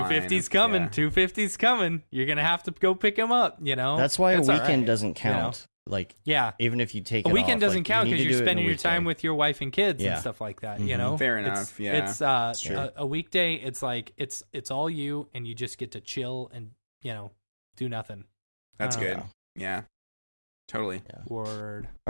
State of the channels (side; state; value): both; inverted; correlation -1.00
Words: coming, 2:50's coming. You're going to have to go pick him up, That's why a weekend doesn't count. Like, even if you take a weekend off, doesn't count because you're spending your time with your wife and kids and stuff like that. Fair enough. It's a weekday. It's like it's all you, and you just get to chill and do nothing. That's good. Yeah, totally. Word.